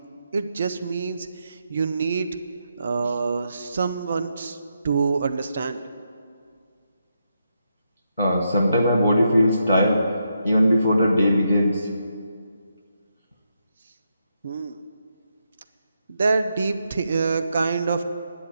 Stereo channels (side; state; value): both; inverted; correlation -0.81